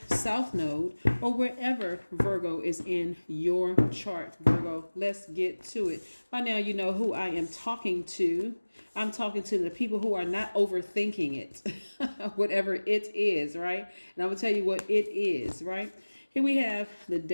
South node, or wherever Virgo is in your chart. Virgo, let's get to it. By now you know who I am talking to. I'm talking to the people who are not overthinking it, whatever it is, right? And I'm going to tell you what it is, right? Here we have the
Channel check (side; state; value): both; inverted; correlation -1.00